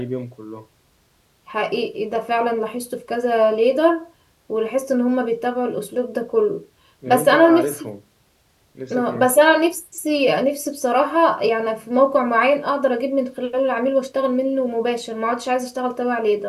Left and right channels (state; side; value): identical; both; correlation 1.00